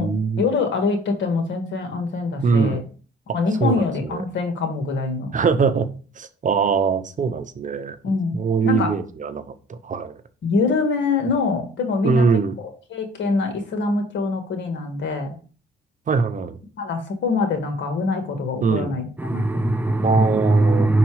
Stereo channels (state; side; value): normal; both; correlation 0.55